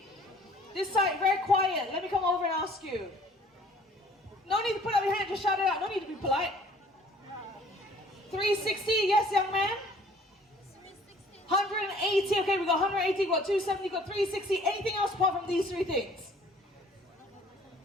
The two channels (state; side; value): normal; both; correlation 0.55